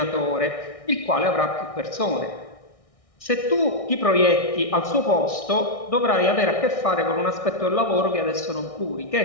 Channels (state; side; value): late; right; 1.6 ms